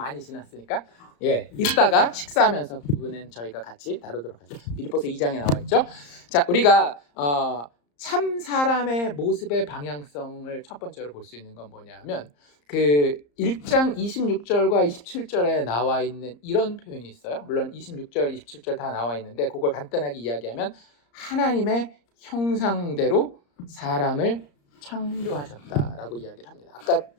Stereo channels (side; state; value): right; late; 34 ms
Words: 지났으니까 이따가 식사하면서 그 부분은 저희가 같이 다루도록 하죠. 빌립보서 2장에 나와 있죠. 자, 우리가 참 사람의 모습의 방향성을 첫 번째로 볼 수 있는 건 뭐냐면 그 1장 26절과 27절에 나와 있는 이런 표현이 있어요. 물론 26절, 27절 다 나와 있는데 그걸 간단하게 이야기하면 하나님의 형상대로 사람을 창조하셨다라고 이야기를 합니다.